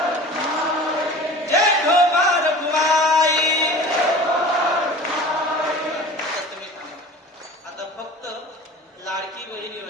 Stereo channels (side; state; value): both; normal; correlation 0.39